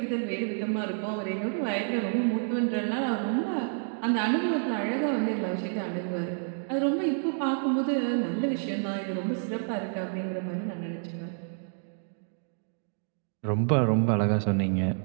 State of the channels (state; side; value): silent; left; 59 dB below the other